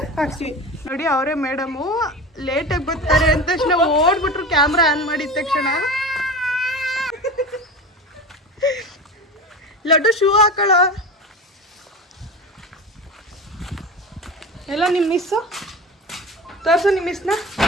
ಹಾಕ್ಸ್ತೀವಿ. ನೋಡಿ ಅವರೇ ಮೇಡಮು ಲೇಟಾಗಿ ಬರ್ತಾರೆ ಅಂತ ತಕ್ಷಣ ಓಡ್ಬಿಟ್ರು ಕ್ಯಾಮ್ರಾ ಆನ್ ಮಾಡಿದ ತಕ್ಷಣ. ಲಡ್ಡು ಶೂ ಹಾಕೊಳ್ಳೋ. ಎಲ್ಲ ನಿಮ್ಮ ಮಿಸ್ಸು ತೋರ್ಸು, ನಿಮ್ಮ ಮಿಸ್ನ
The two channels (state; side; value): normal; both; correlation 0.29